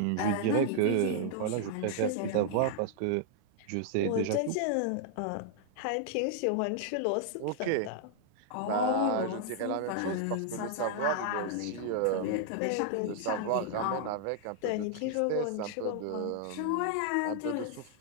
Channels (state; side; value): different; both; correlation -0.01